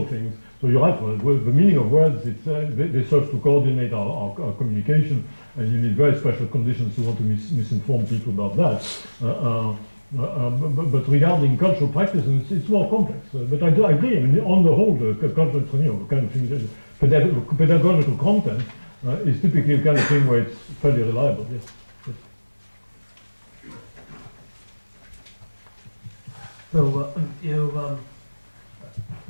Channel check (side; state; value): both; inverted; correlation -1.00